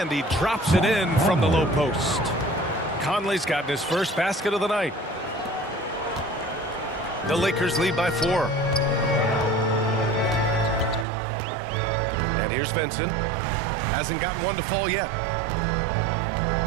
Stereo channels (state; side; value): drops out; left; at 11.1 s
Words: he drops it in from the low post. Conley's gotten his first basket of the night. The Lakers lead by 4. And here's Vincent. Hasn't gotten one to fall yet.